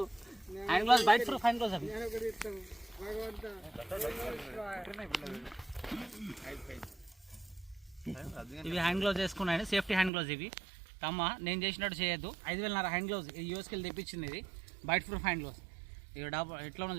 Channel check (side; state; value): left; drops out; at 10.1 s